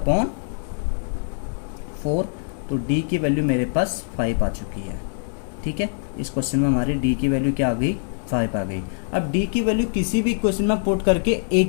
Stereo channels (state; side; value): silent; right; 63 dB below the other